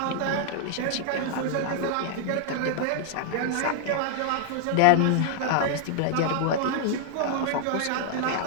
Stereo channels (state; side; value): different; both; correlation -0.01